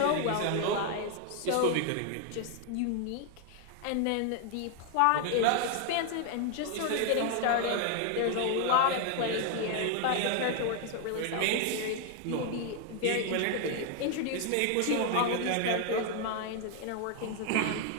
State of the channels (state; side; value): different; both; correlation 0.00